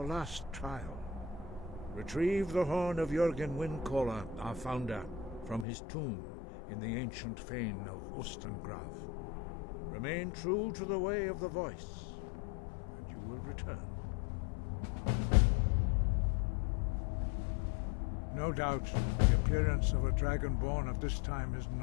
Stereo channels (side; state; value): right; drops out; at 5.7 s